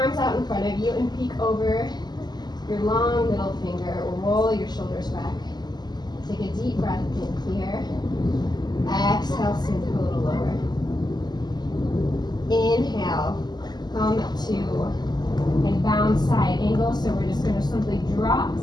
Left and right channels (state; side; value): late; right; 0.20 ms